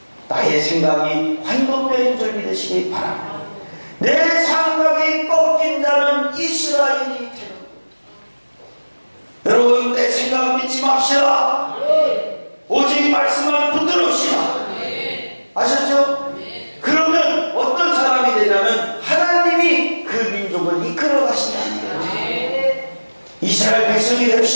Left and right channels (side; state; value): both; inverted; correlation -1.00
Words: 나의 생각이 환도뼈인 줄 믿으시기 바랍니다. 내 생각이 꺾인 자는 이스라엘이 되는 거예요. 여러분, 내 생각 믿지 맙시다. 오직 말씀만 붙들읍시다. 아셨죠? 그러면 어떤 사람이 되냐면 하나님이 그 민족을 이끌어 가신다는 거예요. 이스라엘 백성이